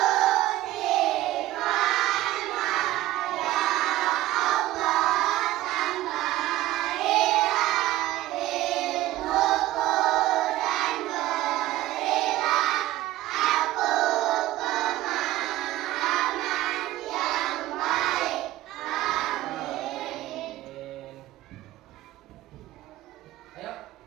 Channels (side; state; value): left; quieter; 15.9 dB